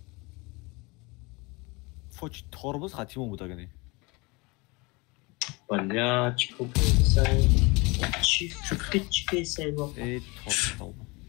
فوج توربوز خطیمون بود اگه نی. بلا چیکو بیسای چی بیسای با ای توربوز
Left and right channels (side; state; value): right; quieter; 26.4 dB